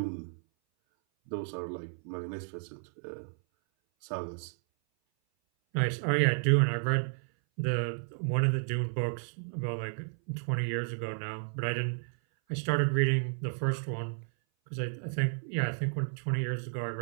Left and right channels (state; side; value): silent; left; 56 dB below the other